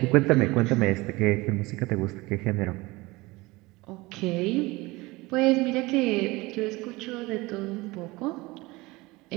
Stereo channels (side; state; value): left; quieter; 21.9 dB